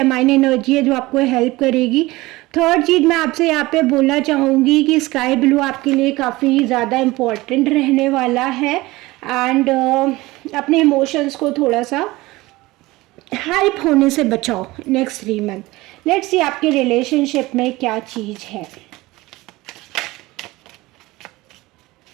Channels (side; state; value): left; quieter; 20.1 dB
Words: एनर्जी है जो आपको हेल्प करेगी। थर्ड चीज़ मैं आपसे यहाँ पे बोलना चाहूँगी कि स्काई ब्लू आपके लिए काफ़ी ज़्यादा इम्पोर्टेंट रहने वाला है। एंड अपने इमोशंस को थोड़ा सा हाइप होने से बचाओ नेक्स्ट 3 मंथ। लेट्स सी आपके रिलेशनशिप में क्या चीज़ है।